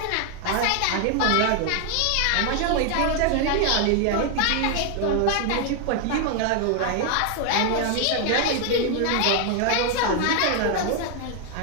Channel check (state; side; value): different; both; correlation 0.00